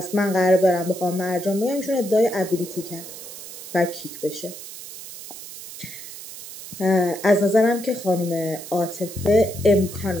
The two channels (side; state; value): right; noise; hiss, 13 dB below the sound